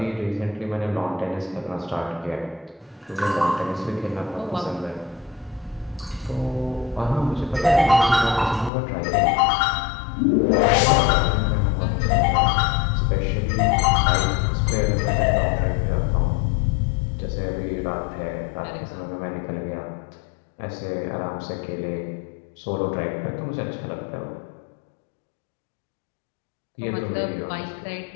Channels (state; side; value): drops out; right; at 8.7 s